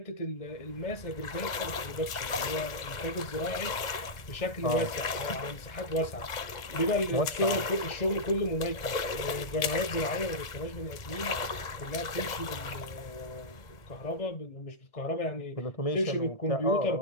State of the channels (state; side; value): late; right; 1.4 ms